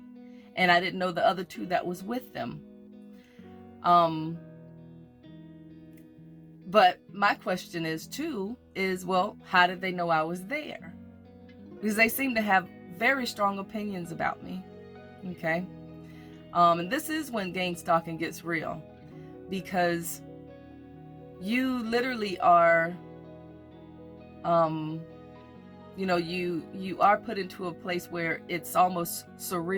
and I didn't know the other two that was with them. But my question is, well, how did they know I was there? Because they seem to have very strong opinions about me. Okay. And this is when gangstalking gets real, because you literally are, you are put into a place where it's almost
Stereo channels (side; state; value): both; identical; correlation 1.00